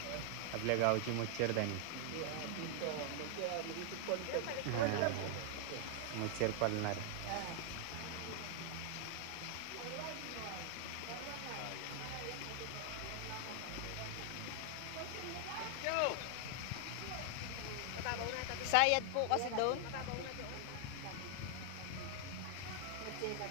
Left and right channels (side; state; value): both; different; correlation 0.00